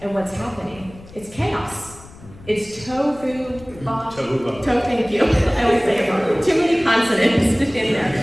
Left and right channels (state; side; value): noise; left; rumble, 20 dB below the sound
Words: And what's happening? It's chaos. It's tohu, thank you. I always say it wrong. Too many consonants in